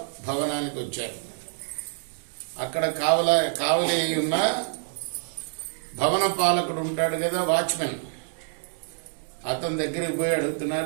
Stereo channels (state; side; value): silent; left; digital silence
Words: భవనానికి వచ్చారు. అక్కడ కావలి ఉన్న భవన పాలకుడు ఉంటాడు కదా, వాచ్మెన్. అతని దగ్గరికి పోయి